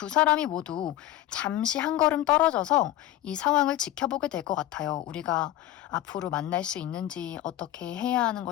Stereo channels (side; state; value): right; quieter; 13.9 dB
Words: 사람이 모두 잠시 한 걸음 떨어져서 이 상황을 지켜보게 될 것 같아요. 우리가 앞으로 만날 수 있는지, 어떻게 해야 하는